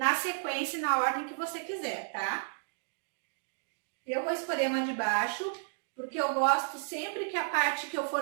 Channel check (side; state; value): left; silent; digital silence